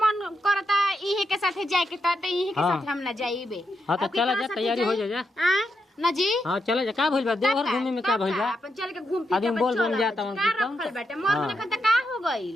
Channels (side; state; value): both; normal; correlation 0.83